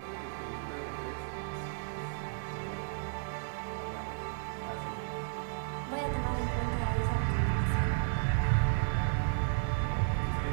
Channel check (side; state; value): left; silent; digital silence